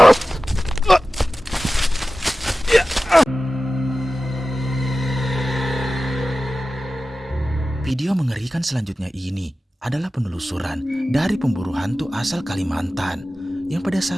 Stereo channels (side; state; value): both; normal; correlation 0.95